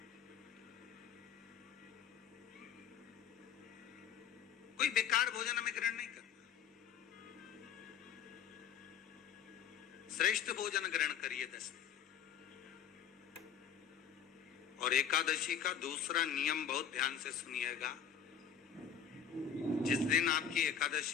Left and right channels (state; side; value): quieter; right; 8.0 dB